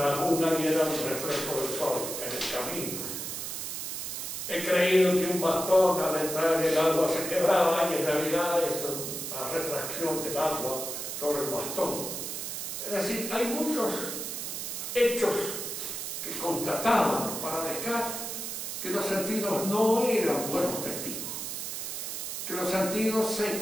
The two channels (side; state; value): right; noise; hiss, 5 dB below the sound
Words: laguna y era un reflejo del sol en el camino. He creído que un bastón al entrar en el agua se quebraba y en realidad es una refracción del agua sobre el bastón. Es decir, hay muchos hechos que constataban para Descartes que los sentidos no eran buenos testigos, que los sentidos se